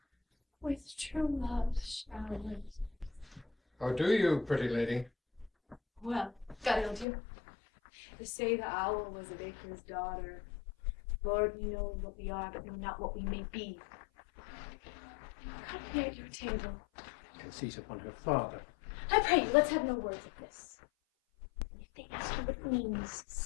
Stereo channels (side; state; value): right; drops out; at 7.1 s